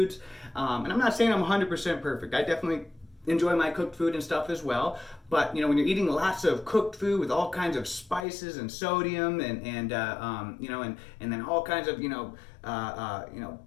And I'm not saying I'm 100% perfect. I definitely enjoy my cooked food and stuff as well, but when you're eating lots of cooked food with all kinds of spices and sodium and then all kinds of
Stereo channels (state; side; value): drops out; right; at 8.2 s